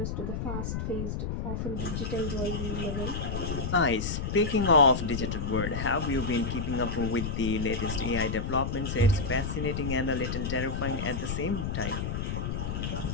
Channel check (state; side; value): noise; left; rumble, 3 dB below the sound